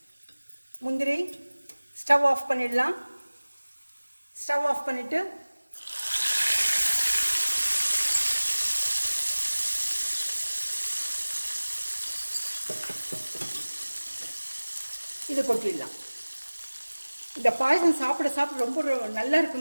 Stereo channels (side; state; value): both; inverted; correlation -1.00